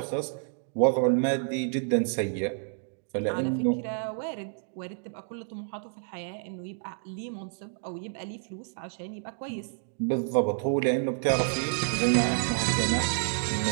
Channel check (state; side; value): silent; left; digital silence